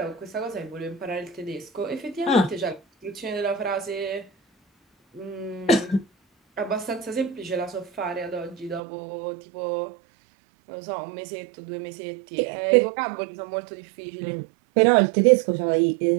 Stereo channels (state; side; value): drops out; left; at 8.8 s